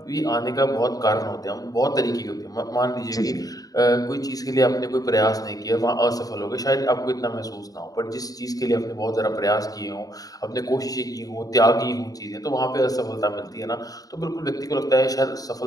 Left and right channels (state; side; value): late; right; 0.18 ms